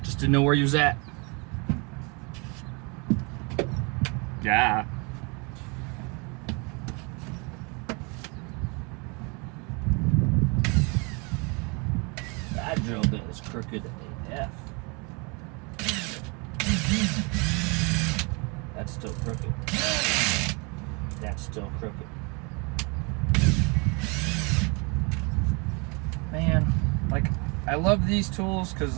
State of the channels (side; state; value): left; quieter; 31.2 dB